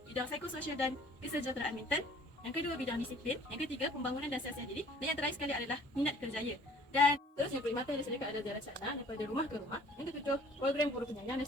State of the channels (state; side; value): normal; both; correlation 0.53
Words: bidang psikososial dan kesejahteraan mental. Yang kedua, bidang disiplin. Yang ketiga, pembangunan dan siasat diri. Dan yang terakhir sekali adalah minat kerjaya. Dan seterusnya, perkhidmatan yang disediakan adalah jalan sana daripada rumah ke rumah. Yang ketujuh, program guru penyayang. Dan